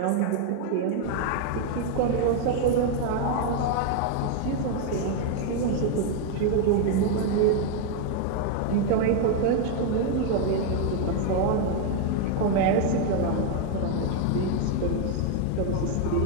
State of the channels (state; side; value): different; both; correlation 0.01